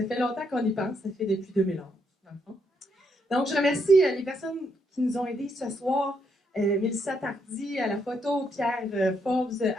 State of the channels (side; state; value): both; normal; correlation 0.76